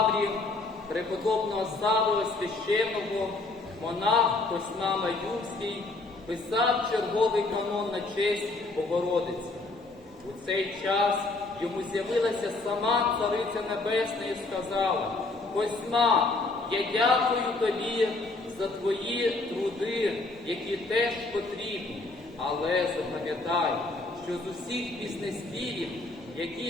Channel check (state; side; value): quieter; right; 3.3 dB